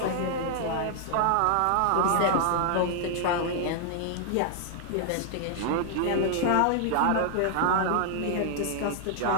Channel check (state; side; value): different; both; correlation 0.00